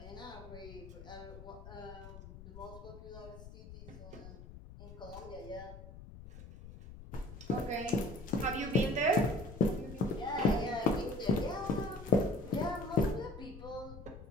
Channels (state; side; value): noise; left; rumble, 14 dB below the sound